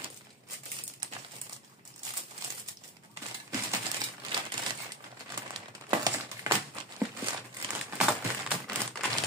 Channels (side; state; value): both; normal; correlation 0.23